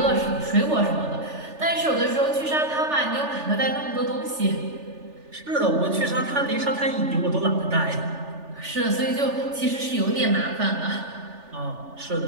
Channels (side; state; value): left; late; 3.4 ms